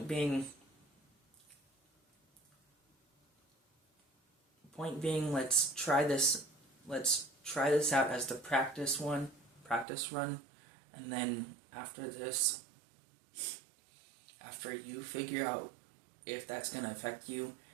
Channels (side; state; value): left; drops out; at 9.9 s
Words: being, let's try this out as the practice run, and then after this, after you figure out if that's going to affect you,